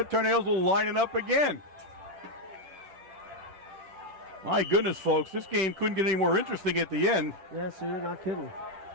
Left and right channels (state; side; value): late; left; 10 ms